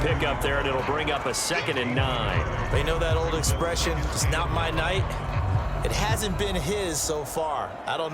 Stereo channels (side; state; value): both; identical; correlation 1.00